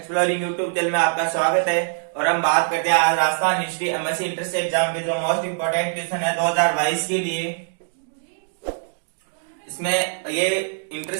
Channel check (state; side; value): silent; left; digital silence